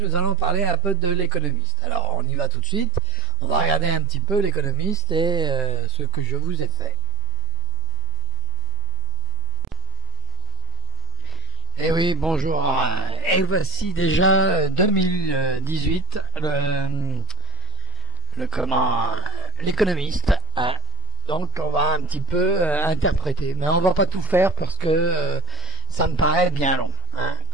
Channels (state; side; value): normal; both; correlation 0.17